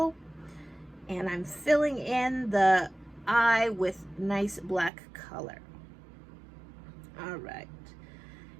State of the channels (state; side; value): drops out; left; at 4.9 s